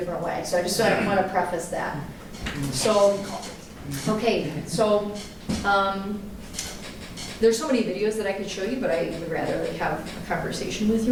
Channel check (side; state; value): both; identical; correlation 1.00